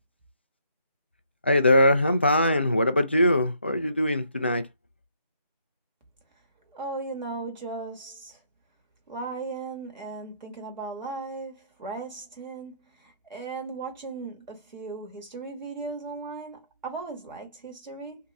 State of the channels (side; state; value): both; inverted; correlation -0.69